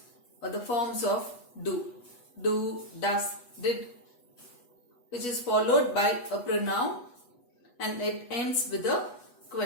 or the forms of do, does, did, which is followed by a pronoun and it ends with a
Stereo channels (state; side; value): late; right; 8.2 ms